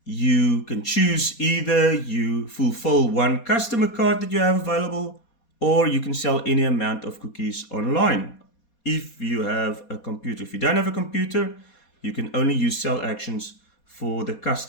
you can choose either you fulfill 1 customer card that you have available, or you can sell any amount of cookies online. If you have a computer. If you don't have a computer, you can only use sell actions for the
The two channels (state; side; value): late; right; 4.2 ms